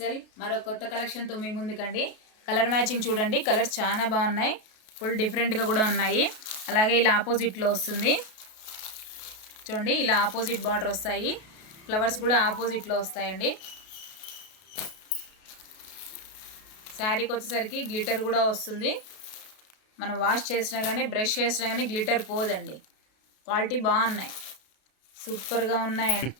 మరో కొత్త కలెక్షన్తో మీ ముందుకండి. కలర్ మ్యాచింగ్ చూడండి, కలర్స్ చాలా బాగున్నాయి, ఫుల్ డిఫరెంట్గా కూడా ఉన్నాయి. అలాగే ఇలా ఆపోజిట్లో వస్తుంది చూడండి, ఇలా ఆపోజిట్ బార్డర్ వస్తాయి, ఫ్లవర్స్ కూడా ఆపోజిట్లో వస్తాయండి. శారీకి వచ్చేసరికి గ్లిటర్ కూడా వస్తుంది. మనం వాష్ చేసినా కానీ బ్రష్ చేసినా కానీ గ్లిటర్ పోదండి. క్వాలిటీ బాగున్నాయి, సూపర్గా ఉన్నాయండి.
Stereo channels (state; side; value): late; right; 32 ms